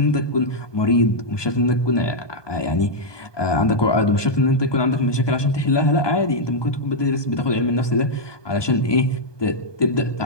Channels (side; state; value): right; late; 1.2 ms